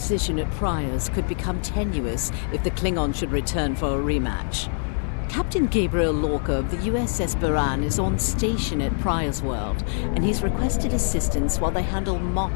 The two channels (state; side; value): silent; right; digital silence